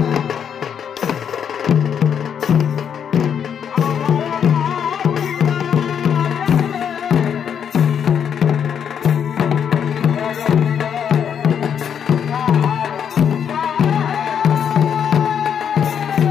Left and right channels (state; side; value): quieter; right; 8.1 dB